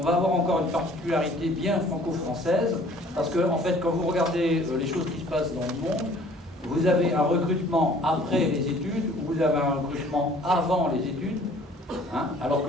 va avoir encore une particularité bien franco-française, parce que en fait, quand vous regardez les choses qui se passent dans le monde, vous avez un recrutement après les études, ou vous avez un recrutement avant les études, hein, alors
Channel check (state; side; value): normal; both; correlation 0.53